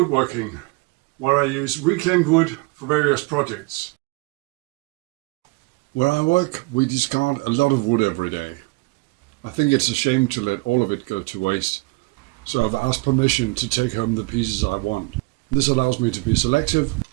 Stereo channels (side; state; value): left; quieter; 25.7 dB